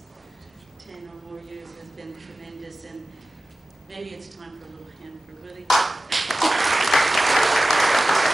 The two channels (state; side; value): normal; both; correlation 0.96